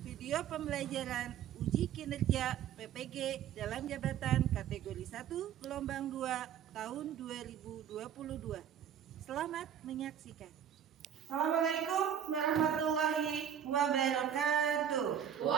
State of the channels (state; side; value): quieter; left; 9.2 dB